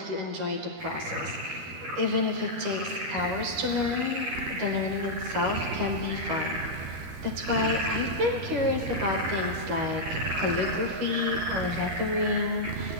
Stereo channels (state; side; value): late; left; 13 ms